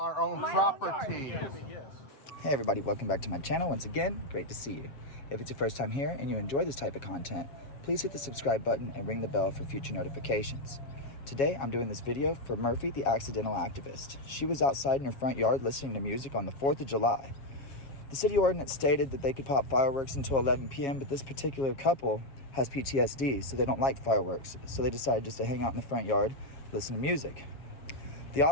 own My own property. yard. Yes. Hey everybody, welcome back to my channel once again. Great to see you. If it's your first time here and you enjoy this type of content, please hit the subscribe button and ring the bell for future notifications. Today I'm doing this video for Murphy, the accidental activist. She was outside in her front yard listening to music on the 4th of July. The city ordinance stated that they could pop fireworks until 11 p.m., but this particular couple has PTSD, so they don't like fireworks. So they decided just to hang out in the front yard, listen to music. The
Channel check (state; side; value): late; right; 7.3 ms